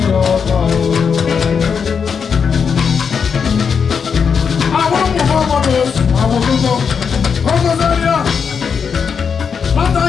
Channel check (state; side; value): quieter; right; 6.4 dB